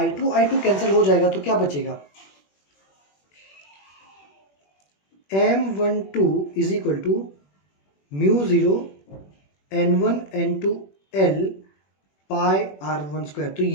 कैंसिल हो जाएगा तो क्या बचेगा, m12 is equal to mu 0 n1 n2 l pi r1 square. तो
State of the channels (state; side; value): late; right; 21 ms